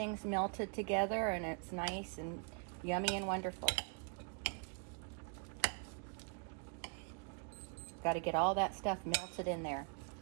melted together and it's nice and yummy and wonderful. Got to get all that stuff melted in there.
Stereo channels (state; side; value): quieter; left; 39.5 dB